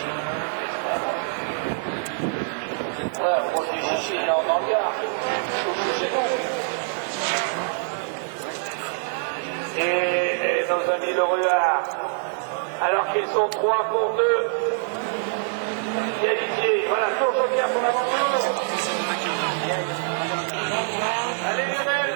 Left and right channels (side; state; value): left; silent; 62 dB below the other